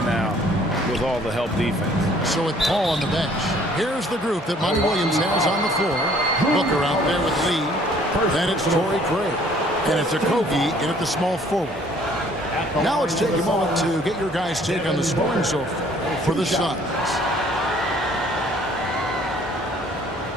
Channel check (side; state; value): both; normal; correlation 0.58